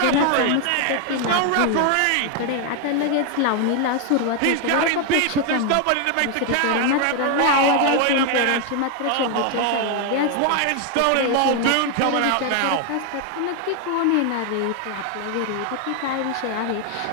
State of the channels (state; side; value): different; both; correlation 0.00